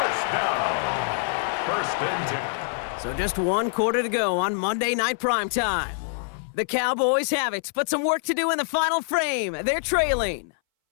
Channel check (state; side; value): silent; right; 60 dB below the other